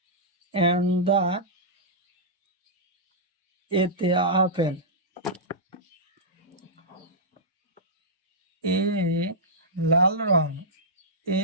and the এতে আপেল। এ লাল রং,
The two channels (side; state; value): both; normal; correlation -0.12